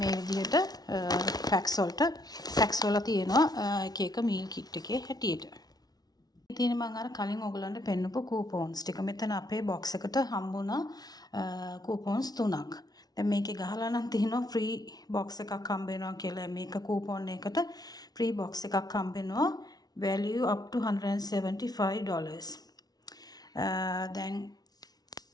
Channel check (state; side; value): late; right; 0.19 ms